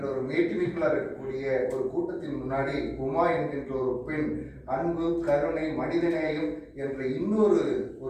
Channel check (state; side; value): identical; both; correlation 1.00